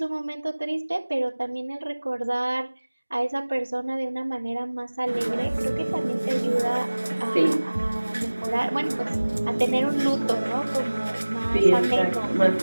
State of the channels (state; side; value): inverted; both; correlation -1.00